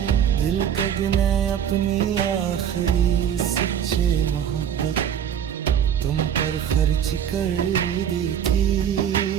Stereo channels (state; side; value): quieter; left; 9.0 dB